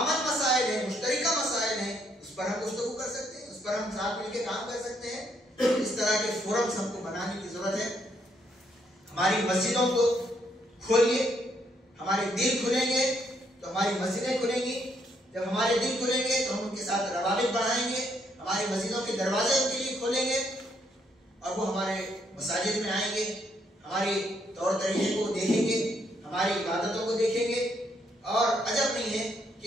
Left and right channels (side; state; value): both; normal; correlation 0.73